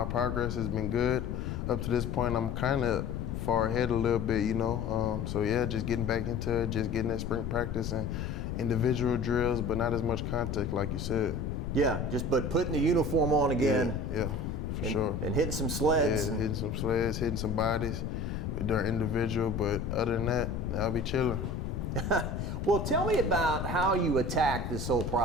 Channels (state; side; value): noise; left; rumble, 3 dB below the sound